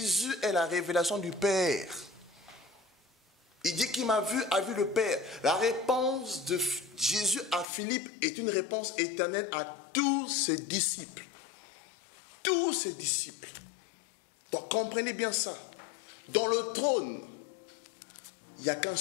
est la révélation du Père. Il dit qu'il m'a vu, a vu le Père. La réponse de Jésus à Philippe est une réponse éternelle à tous ses disciples. Tous ses disciples. Donc comprenez bien ça. Dans le trône, il n'y a qu'un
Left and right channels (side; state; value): right; drops out; at 7.7 s